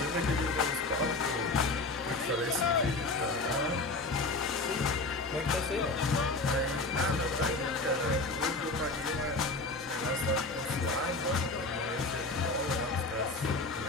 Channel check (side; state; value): right; quieter; 3.2 dB